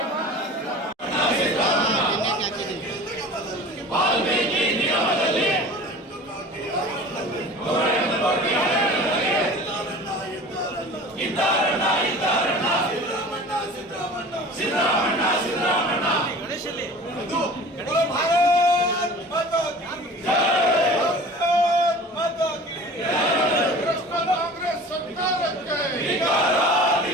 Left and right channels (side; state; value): both; normal; correlation 0.40